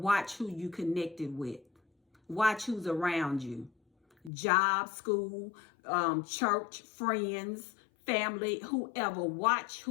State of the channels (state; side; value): drops out; right; at 4.3 s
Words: who you connected with. Watch who's around you. Job, school, church, friends, family, whoever. Watch